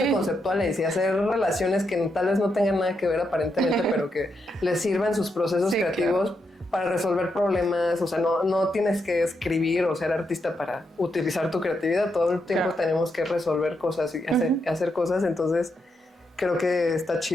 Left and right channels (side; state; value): both; normal; correlation 0.82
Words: conceptuales y hacer relaciones que tal vez no tengan nada que ver aparentemente, pero que les sirvan sus procesos creativos para resolver problemas. O sea, no tienes que escribir o ser artista para utilizar tu creatividad. Todo el tiempo tenemos que resolver cosas y hacer cosas. Entonces, creo que está